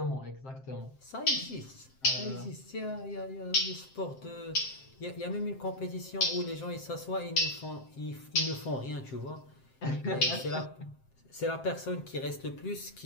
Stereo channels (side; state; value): right; late; 7.6 ms